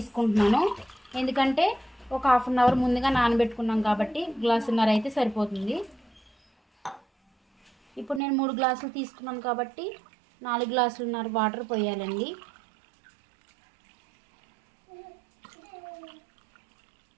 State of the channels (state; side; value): drops out; left; at 8.2 s